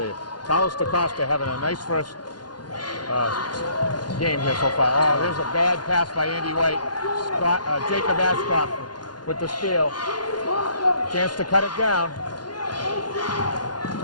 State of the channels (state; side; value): late; right; 0.70 ms